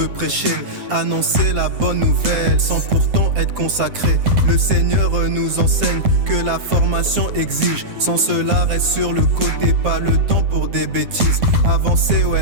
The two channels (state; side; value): late; left; 9.2 ms